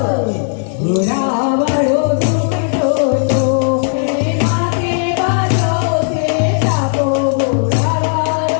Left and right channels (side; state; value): right; silent; 70 dB below the other